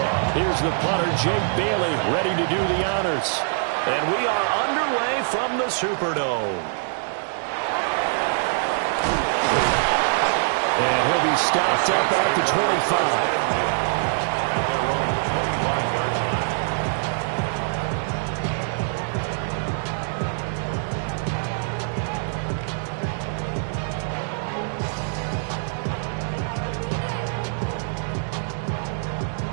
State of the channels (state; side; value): silent; left; digital silence